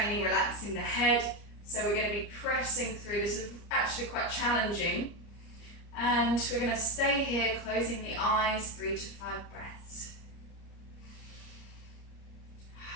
relaxing the head. So we're going to be pressing through. This is actually quite challenging. And we're going to stay here, closing the eyes, 3 to 5 breaths.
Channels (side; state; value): right; late; 30 ms